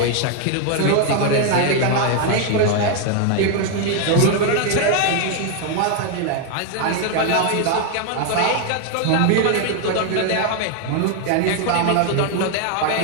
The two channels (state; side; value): different; both; correlation 0.01